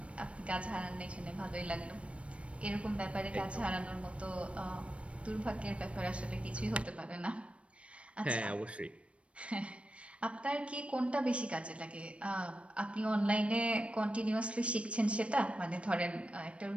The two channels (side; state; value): left; late; 0.061 ms